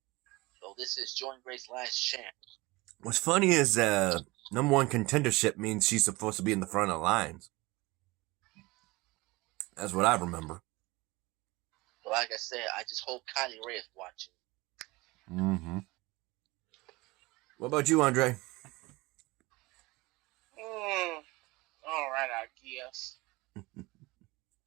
So this is Jordynne Grace's last chance. What's funny is number one contendership means she's supposed to be in the front of the lines. That's what I remember. But like I said, I just hope Kylie Ray is watching. Mm-hmm. What about you, Andre? All right, I guess.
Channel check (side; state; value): left; quieter; 22.4 dB